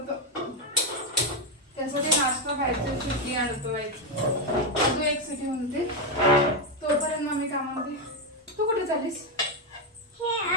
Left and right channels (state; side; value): normal; both; correlation 0.06